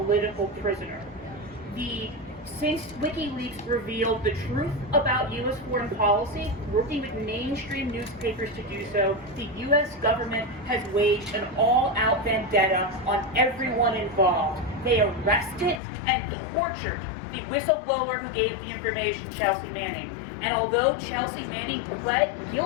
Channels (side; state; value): right; drops out; at 15.8 s